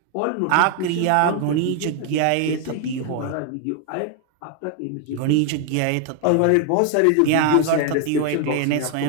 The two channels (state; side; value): different; both; correlation 0.01